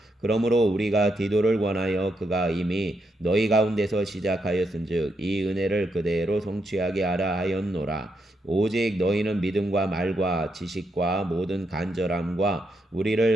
그러므로 우리가 디도를 권하여 그가 이미 너희 가운데서 시작하였은즉 이 은혜를 그대로 성취하게 하라 하였노라. 오직 너희는 믿음과 말과 지식과 모든 간절함과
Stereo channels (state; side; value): normal; both; correlation 0.81